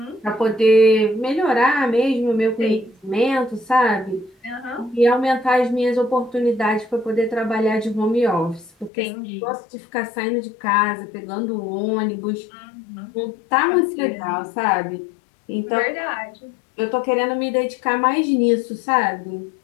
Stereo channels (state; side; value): drops out; right; at 8.9 s